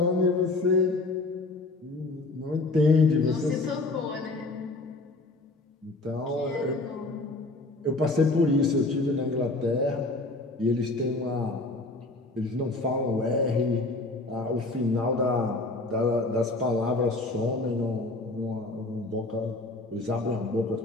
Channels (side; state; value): right; quieter; 3.0 dB